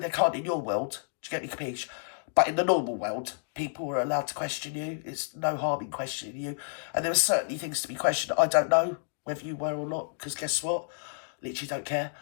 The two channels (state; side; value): silent; right; digital silence